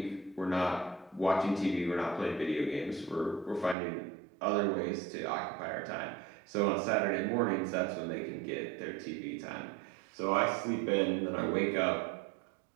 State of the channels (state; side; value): drops out; left; at 3.8 s